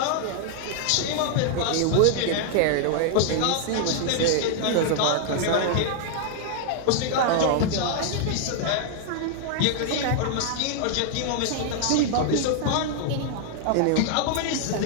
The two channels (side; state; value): both; different; correlation -0.01